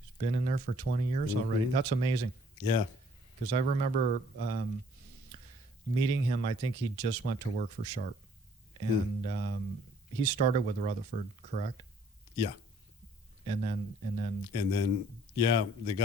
He's been in there for 20 years already. That's amazing. Yeah. Because I remember meeting him. I think he just went to work for Sharp. And he started with Rutherford, correct? Yeah. And then Yeah, they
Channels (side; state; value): both; normal; correlation 0.60